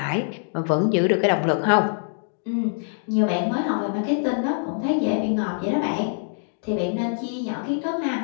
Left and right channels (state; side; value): silent; right; digital silence